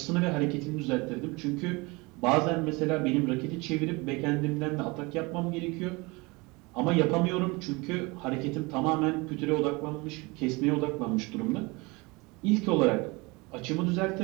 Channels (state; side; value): quieter; left; 25.4 dB